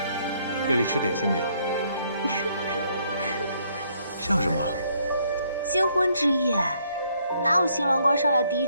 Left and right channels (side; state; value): both; inverted; correlation -0.69